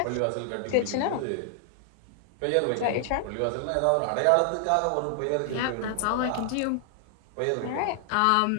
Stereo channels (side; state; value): both; different; correlation 0.00